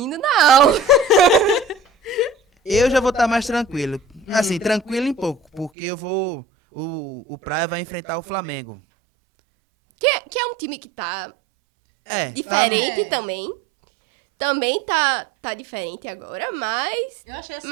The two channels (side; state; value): left; drops out; at 5.7 s